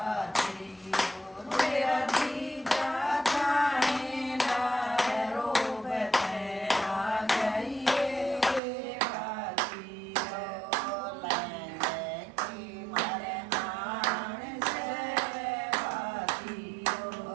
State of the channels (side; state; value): left; drops out; at 8.6 s